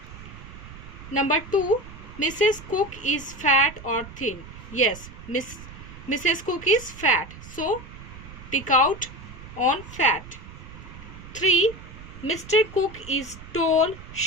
Number 2. Mrs. Cook is fat or thin. Yes, Mrs. Cook is fat. So tick out on fat. 3. Mr. Cook is tall,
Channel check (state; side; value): noise; right; rumble, 15 dB below the sound